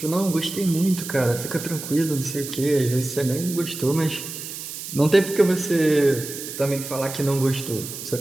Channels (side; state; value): right; noise; hiss, 9 dB below the sound